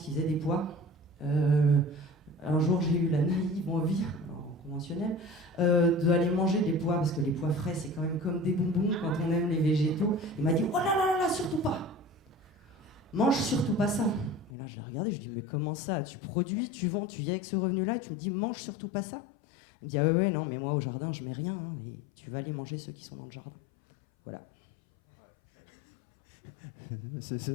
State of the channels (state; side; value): drops out; right; at 14.5 s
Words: faisaient des pois, un jour j'ai eu la naïve envie, en conventionnel, d'aller manger des pois, parce que les pois frais c'est quand même comme des bonbons quand on aime les végétaux. Il m'a dit oh là là là, surtout pas, mange surtout pas ça. Et là je l'ai regardé, je lui ai dit mais comment ça, tu produis, tu vends, tu viens avec ce revenu là, tu me dis mange surtout pas ça. Il me dit ah ouais non mais moi au jardin je mets rien, hein, mais tu vas aller manger ceux qui sont dans le jardin. Voilà.